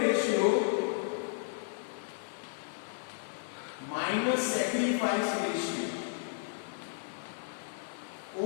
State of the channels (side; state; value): right; silent; digital silence